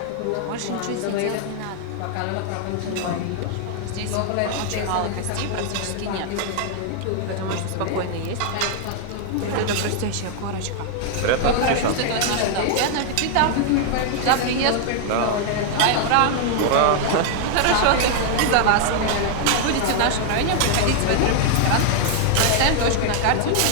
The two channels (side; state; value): both; different; correlation 0.00